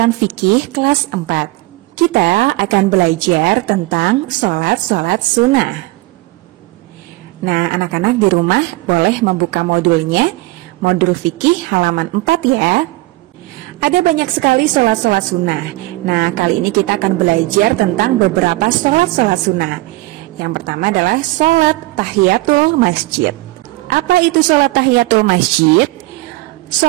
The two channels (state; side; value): quieter; left; 20.3 dB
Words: fikih kelas 4. Kita akan belajar tentang sholat sunnah. Nah, anak-anak di rumah boleh membuka modulnya, modul fikih halaman 4 ya. Ada banyak sekali sholat sunnah. Nah, kali ini kita akan belajar tentang beberapa sholat sunnah. Yang pertama adalah sholat tahiyatul masjid. Apa itu sholat tahiyatul masjid?